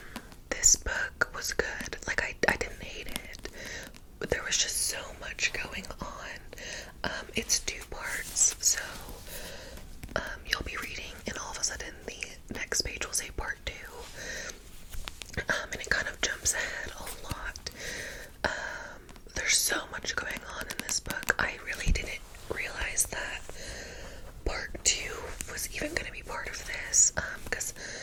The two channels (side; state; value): both; identical; correlation 1.00